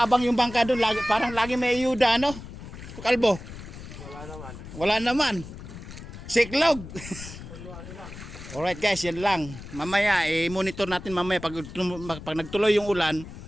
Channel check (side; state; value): left; noise; rumble, 13 dB below the sound